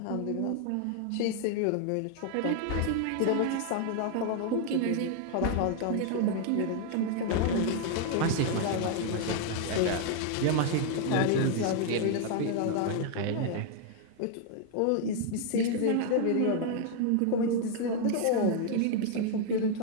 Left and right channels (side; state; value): both; different; correlation 0.00